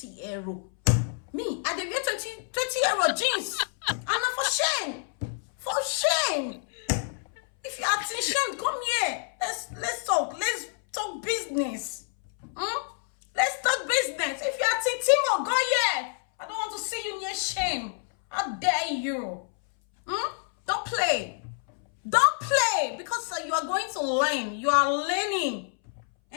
euro. Me, I dey get 20 euro jeans. And not for Shein. For Shein. If you are in Shein, come here. Let's talk. Let's talk business. Let's talk business. If you are in Temu, go here. I don't want to see you near Shein. How dare you? Don't play. Don't play. Because you are going to learn. You are learning.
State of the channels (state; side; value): silent; right; 60 dB below the other